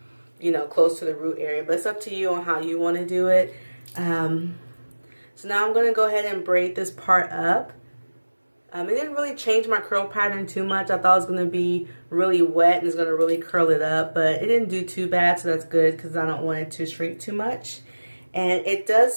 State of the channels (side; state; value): both; inverted; correlation -1.00